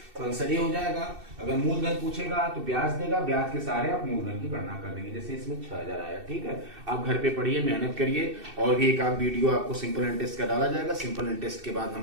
तो आंसर ये हो जाएगा। अगर मूलधन पूछेगा तो ब्याज देगा, ब्याज के सहारे आप मूलधन की गणना कर देंगे। जैसे इसमें 6,000 आया। ठीक है, आप घर पे पढ़िए, मेहनत करिए, और भी एक आध वीडियो आपको सिंपल इंटरेस्ट का डाला जाएगा। सिंपल इंटरेस्ट के बाद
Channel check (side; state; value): left; late; 2.6 ms